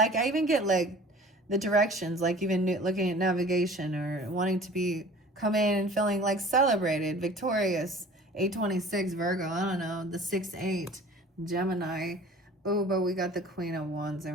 I even get like the directions, like even looking at navigation or wanting to be come in and feeling like celebrated, victorious. 826 Virgo, I don't know, the 6-8 Gemini. Oh, but we got the Queen of Wands in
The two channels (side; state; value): both; normal; correlation 0.45